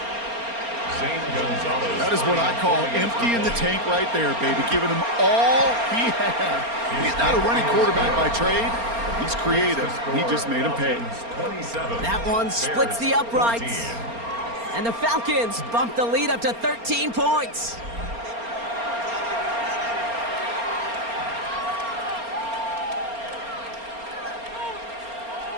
That is what I call emptying the tank right there, baby. Giving him all he had. He's not a running quarterback by trade. He's creative. He just made him pay. That one splits the uprights. And the Falcons bump the lead up to 13 points.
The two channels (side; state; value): left; late; 4.3 ms